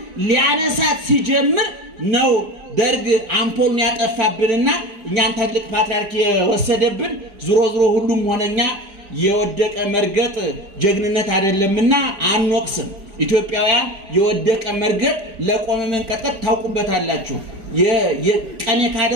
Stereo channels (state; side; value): late; left; 4.9 ms